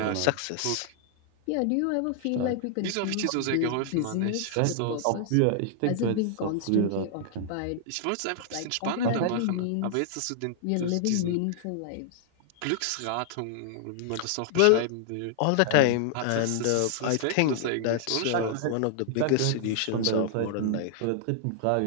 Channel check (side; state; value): both; different; correlation -0.01